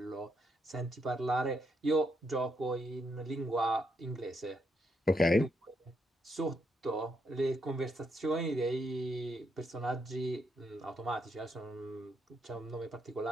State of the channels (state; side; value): normal; both; correlation 0.78